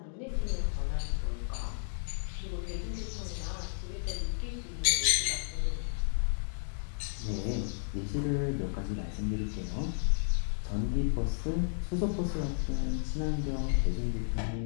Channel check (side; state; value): right; silent; digital silence